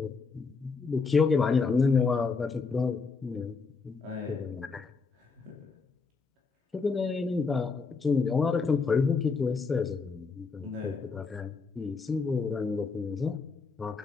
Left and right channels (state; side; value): quieter; right; 4.7 dB